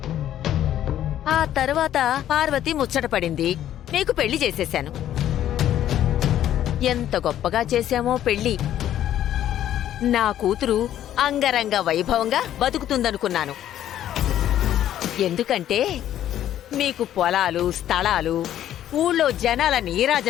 ఆ తర్వాత పార్వతి ముచ్చటపడింది. నీకు పెళ్లి చేసేశాను. ఎంత గొప్పగా చేశామో పెళ్లి. నా కూతురు అంగరంగ వైభవంగా బతుకుతుందనుకున్నాను. ఎందుకంటే మీకు పొలాలు, స్థలాలు, ఊళ్ళో జనాల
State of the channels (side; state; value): right; quieter; 11.6 dB